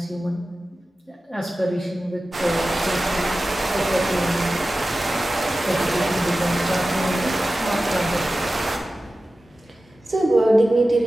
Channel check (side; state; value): both; normal; correlation 0.95